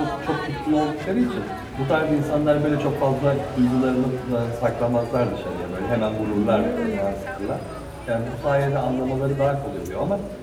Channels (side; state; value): both; identical; correlation 1.00